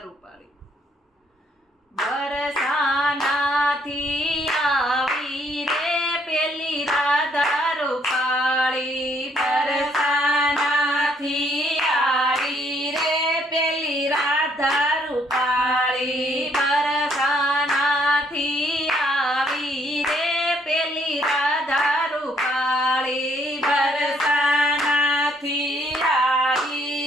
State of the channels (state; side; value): normal; both; correlation 0.68